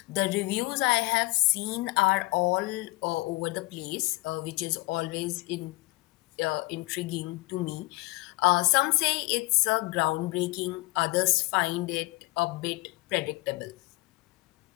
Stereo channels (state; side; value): quieter; right; 23.1 dB